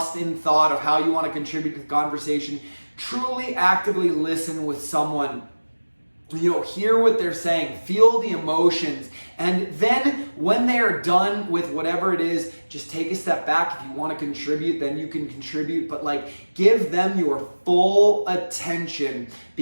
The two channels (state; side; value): inverted; both; correlation -1.00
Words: in thought of how you want to contribute to the conversation. Truly actively listen with someone. Hear what they're saying, feel the emotions, and then when they are done with whatever it is, just take a step back. If you want to contribute, then you can contribute, but give them your full attention,